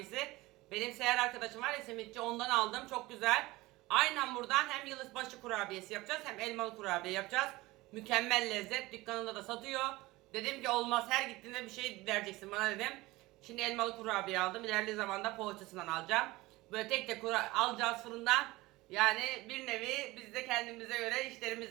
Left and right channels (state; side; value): quieter; left; 20.1 dB